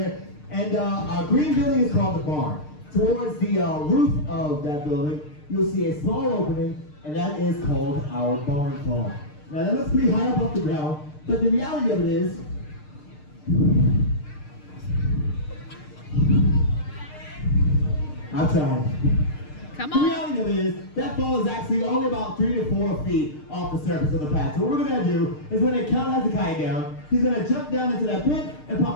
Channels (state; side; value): late; right; 6.6 ms